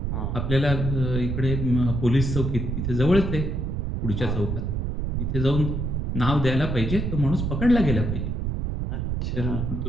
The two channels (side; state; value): right; noise; rumble, 1 dB below the sound